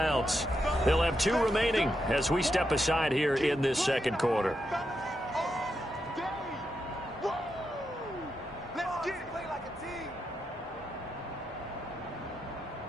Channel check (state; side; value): normal; both; correlation 0.84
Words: They'll have 2 remaining as we step aside here in this second quarter.